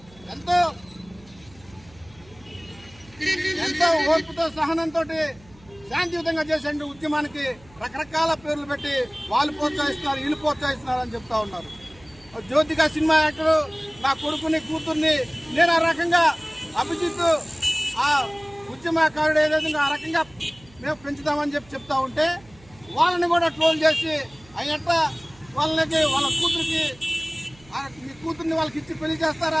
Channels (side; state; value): right; noise; hum, 25 dB below the sound